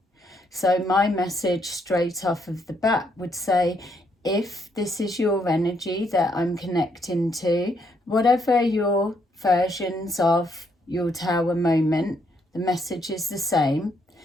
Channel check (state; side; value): normal; both; correlation 0.73